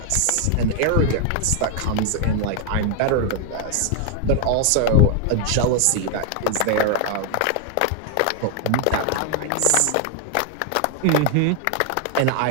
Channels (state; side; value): different; both; correlation 0.00